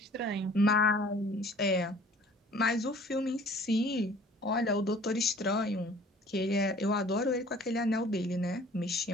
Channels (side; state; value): both; normal; correlation 0.51